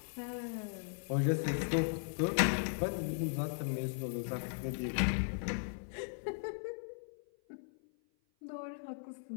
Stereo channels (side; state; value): right; silent; 53 dB below the other